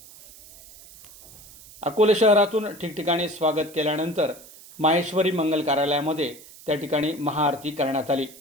अकोले शहरातून ठिकठिकाणी स्वागत केल्यानंतर माहेश्वरी मंगल कार्यालयामध्ये त्या ठिकाणी महाआरती करण्यात आली।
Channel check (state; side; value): noise; right; hiss, 20 dB below the sound